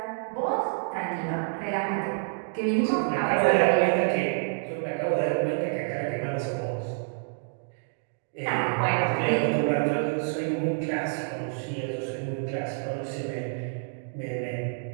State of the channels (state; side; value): silent; left; digital silence